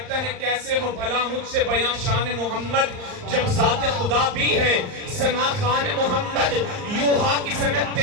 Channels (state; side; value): late; left; 39 ms